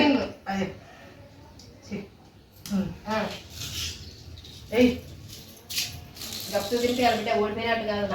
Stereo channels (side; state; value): both; identical; correlation 1.00